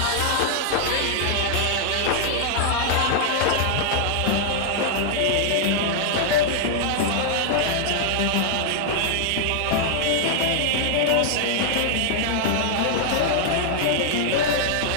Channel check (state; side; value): different; both; correlation -0.01